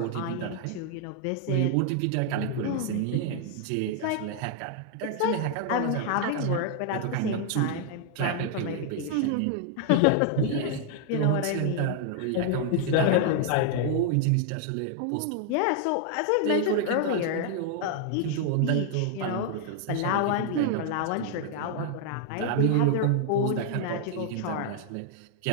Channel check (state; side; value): different; both; correlation 0.00